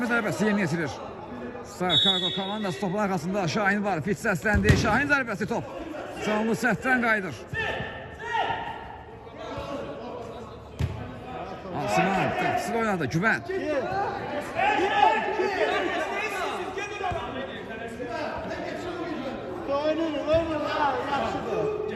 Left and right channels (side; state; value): both; identical; correlation 1.00